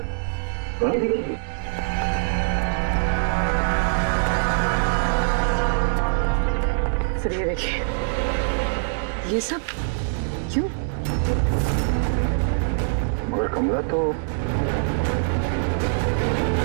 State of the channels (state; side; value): silent; left; 63 dB below the other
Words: सर ये देखिए, ये सब क्यों? मगर कमला तो,